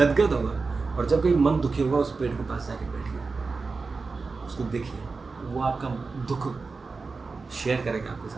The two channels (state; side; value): quieter; left; 4.3 dB